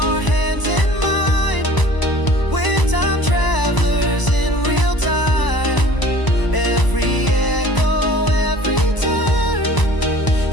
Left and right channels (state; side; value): late; right; 1.0 ms